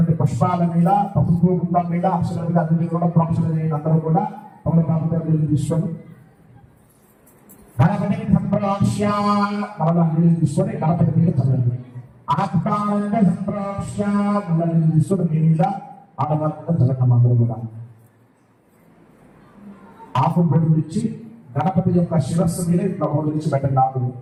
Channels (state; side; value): identical; both; correlation 1.00